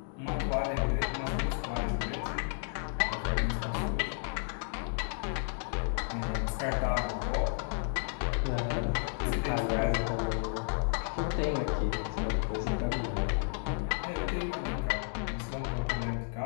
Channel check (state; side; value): silent; right; digital silence